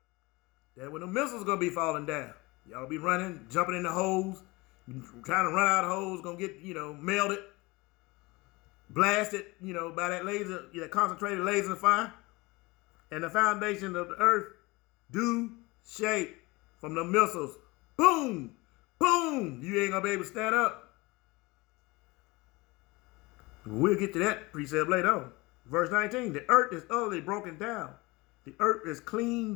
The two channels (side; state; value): right; quieter; 23.4 dB